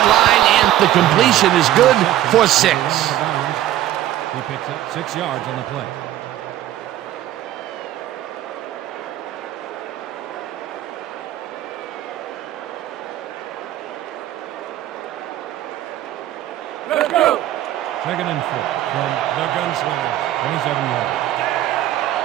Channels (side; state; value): left; quieter; 13.3 dB